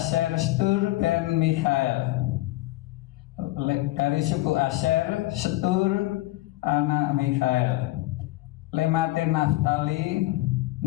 Stur ben Mikhael, dari suku Aser Stur anak Mikhael. Lemate Naftali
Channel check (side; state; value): right; quieter; 18.3 dB